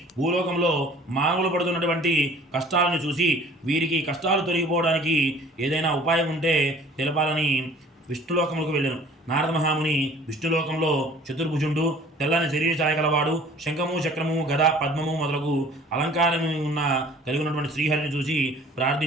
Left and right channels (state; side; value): normal; both; correlation 0.50